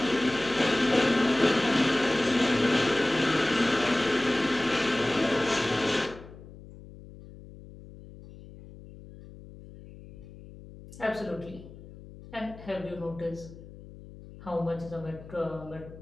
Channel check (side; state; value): left; noise; hum, 18 dB below the sound